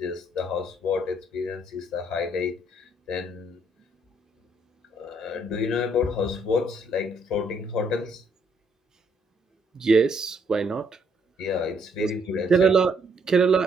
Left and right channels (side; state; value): both; normal; correlation 0.69